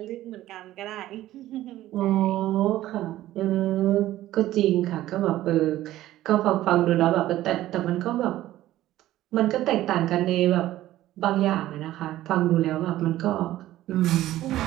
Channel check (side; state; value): left; quieter; 14.5 dB